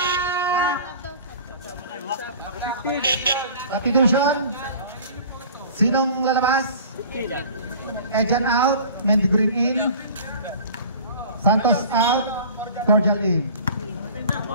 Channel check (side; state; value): both; inverted; correlation -0.43